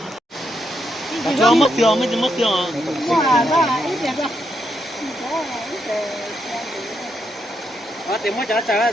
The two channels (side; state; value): both; normal; correlation 0.80